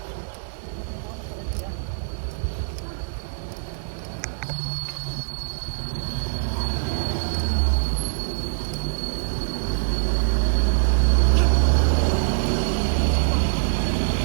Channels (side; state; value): left; silent; digital silence